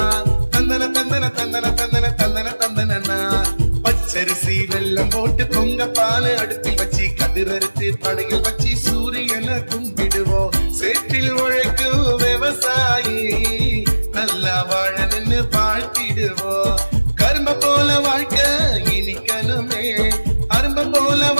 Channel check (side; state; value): both; inverted; correlation -1.00